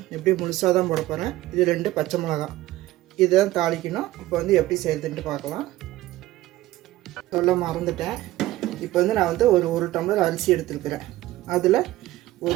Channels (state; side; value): quieter; left; 16.5 dB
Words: எப்படி முழுசாக தான் போட போகிறேன். இது 2 பச்சை மிளகாய். இதுதான் தாளிக்கணும். இப்போ வந்து எப்படி செய்யறதுன்ட்டு பார்க்கலாம். சொல்ல மறந்துட்டேன். இப்போ வந்து நான் வந்து ஒரு டம்ளர் அரிசி எடுத்துருக்கிறேன். அதில்